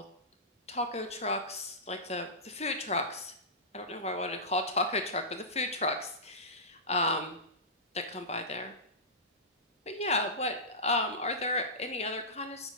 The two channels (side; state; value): both; normal; correlation -0.18